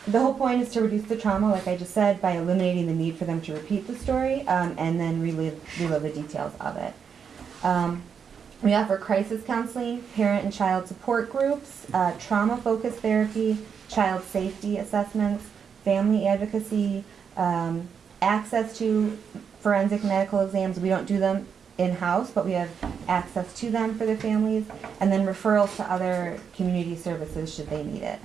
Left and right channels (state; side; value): quieter; left; 6.9 dB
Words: The whole point is to reduce the trauma, like I just said, by eliminating the need for them to repeat the story and then relive the details of it. We offer crisis counseling, parent and child support groups, trauma-focused therapy, child safety assessments, family advocacy, access to forensic medical exams. We don't do them in-house, but we have access to them for the families, and then referrals to other community services should they need it,